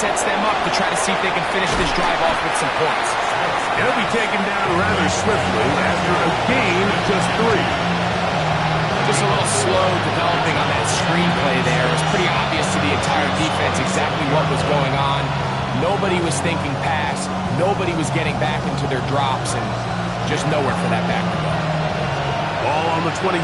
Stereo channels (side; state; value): both; identical; correlation 1.00